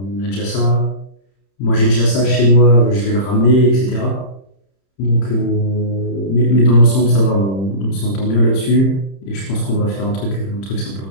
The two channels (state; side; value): late; right; 31 ms